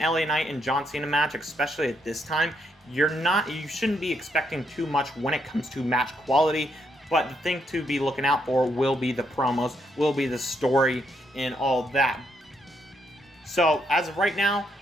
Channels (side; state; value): both; normal; correlation 0.76